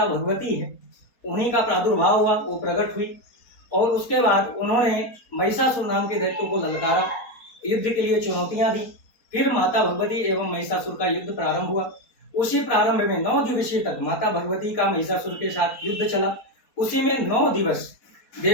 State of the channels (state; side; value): late; right; 4.2 ms